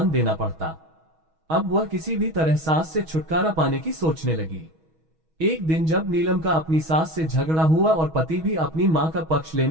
देना पड़ता। अब वह किसी भी तरह सास से छुटकारा पाने की सोचने लगी। एक दिन जब नीलम का अपनी सास से झगड़ा हुआ और पति भी अपनी मां का पक्ष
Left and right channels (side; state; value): left; late; 6.3 ms